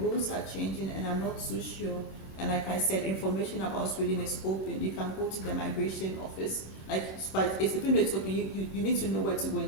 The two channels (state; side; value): late; right; 26 ms